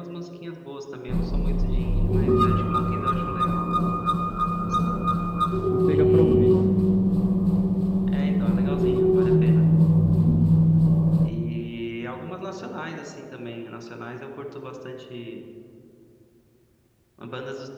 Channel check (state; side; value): identical; both; correlation 1.00